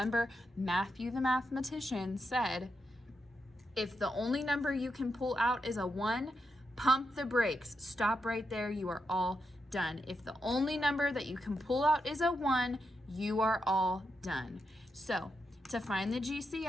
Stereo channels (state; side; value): normal; both; correlation 0.85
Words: Matthew the mathematician said, if the only number you can pull out is a 1, pump the brakes. Stop right there. You are all done. If the only number that you can pull out is a 1, you are all done. So to find the